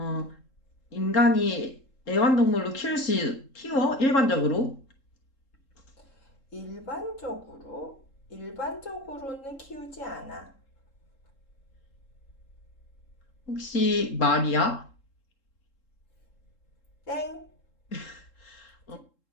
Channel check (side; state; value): right; late; 3.7 ms